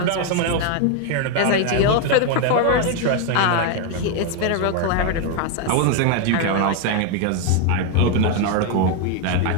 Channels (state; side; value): different; both; correlation 0.01